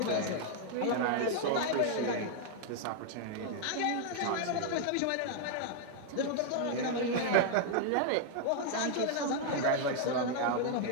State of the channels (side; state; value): both; different; correlation 0.00